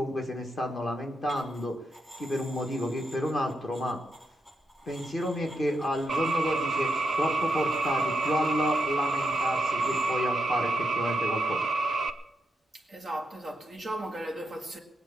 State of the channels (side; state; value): both; normal; correlation 0.84